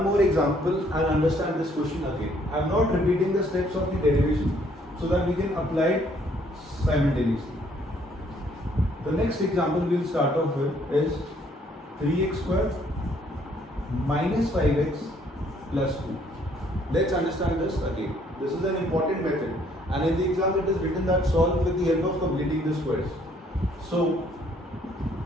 more example and understand this question again. I am not repeating the steps of the derivation so that we can apply it simultaneously. The next example we will start off with is 3x square minus 5x plus 2. Let's understand this again. This is an important method, and in the exam it is written that solve with the help of completing the squares. So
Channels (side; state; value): both; normal; correlation 0.64